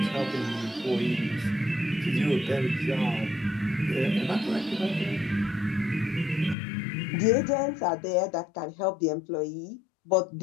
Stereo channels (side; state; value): right; drops out; at 6.6 s